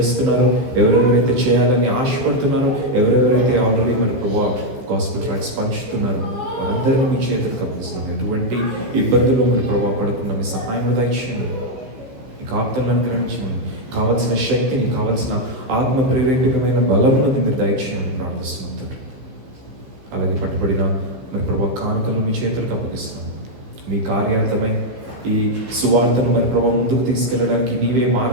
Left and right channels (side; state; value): left; late; 15 ms